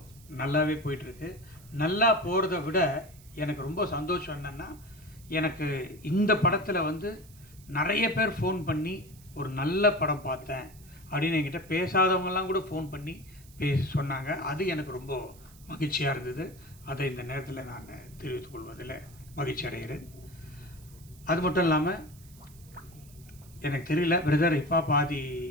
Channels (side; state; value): right; noise; hiss, 24 dB below the sound